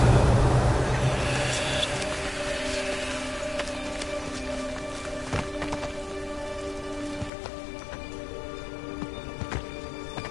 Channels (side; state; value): right; drops out; at 7.3 s